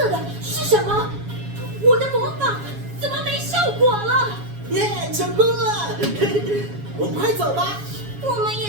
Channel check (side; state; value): left; late; 7.2 ms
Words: 的是什么？我的魔法怎么没效果了？耶，成功了！我们快走吧。我们